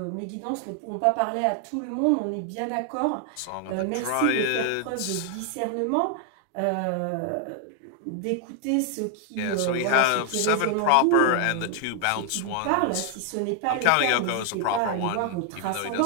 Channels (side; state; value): both; different; correlation 0.00